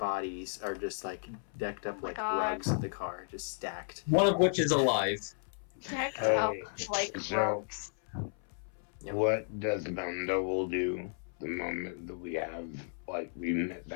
are just like decked up like rugs in the car, just stacked. One of which is alive. Decked up like rugs. Yep. What Desdemona will do the moment that we have, like, we met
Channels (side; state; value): right; silent; 55 dB below the other